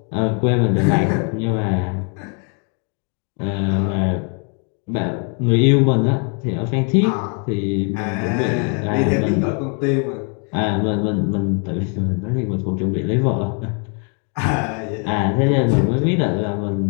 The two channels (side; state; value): right; quieter; 39.4 dB